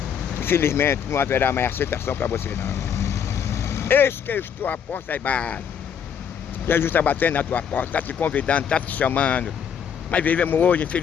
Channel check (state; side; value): quieter; right; 7.9 dB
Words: infelizmente não haverá mais aceitação para você, não. Eis que eu estou à porta e bato. Jesus está batendo na tua porta, está te convidando, está te chamando. Mas vivemos hoje,